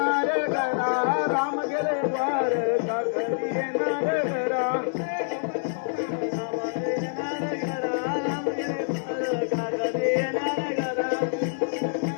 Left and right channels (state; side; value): silent; right; digital silence